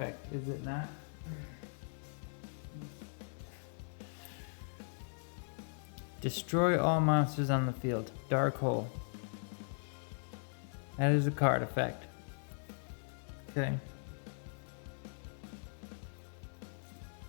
is it not? Destroy all monsters on the field. Dark hole. That is a card effect. Okay.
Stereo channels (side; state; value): right; silent; digital silence